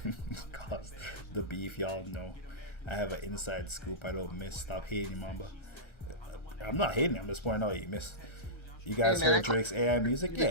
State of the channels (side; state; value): right; late; 1.4 ms